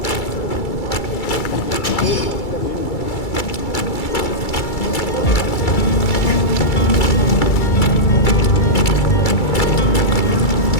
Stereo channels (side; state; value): right; late; 2.3 ms